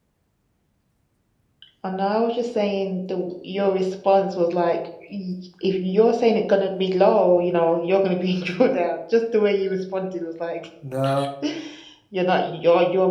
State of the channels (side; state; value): both; identical; correlation 1.00